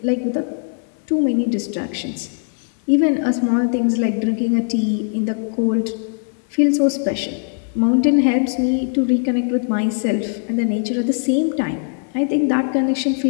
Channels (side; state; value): right; silent; 60 dB below the other